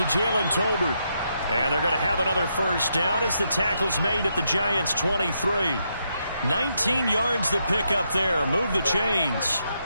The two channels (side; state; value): both; inverted; correlation -0.80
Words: Jalen Tolbert. And they're going to have another first down as the tackle's made at the Giants' 23. 19 yards to pick up there. Move the chains.